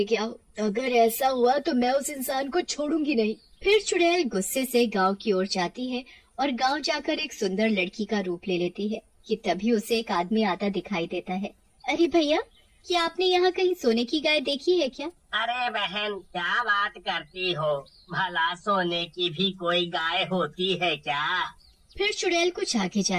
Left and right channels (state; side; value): identical; both; correlation 1.00